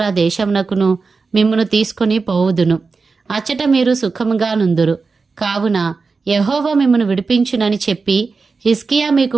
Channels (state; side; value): quieter; left; 4.4 dB